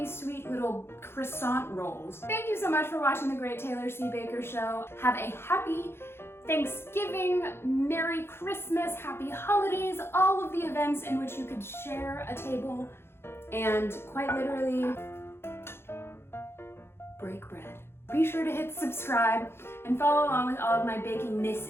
sweet little croissant rolls. Thank you so much for watching the Great Taylor C. Baker Show. Have a happy Thanksgiving, Merry Christmas, Happy Holidays, all of the events in which you could share a table and quite literally break bread. Be sure to hit subscribe and follow along with all of my baking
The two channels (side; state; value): right; late; 0.12 ms